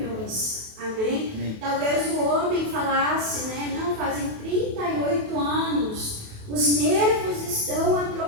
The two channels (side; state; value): left; late; 28 ms